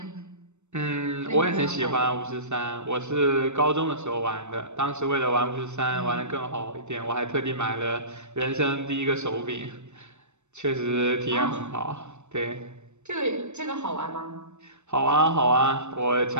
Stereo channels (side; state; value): left; late; 0.83 ms